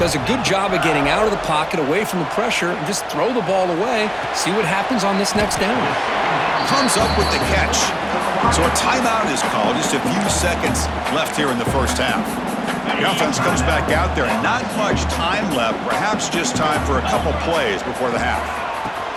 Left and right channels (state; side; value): identical; both; correlation 1.00